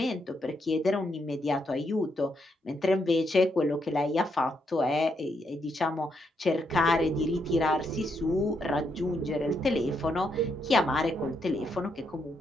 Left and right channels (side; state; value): both; normal; correlation 0.78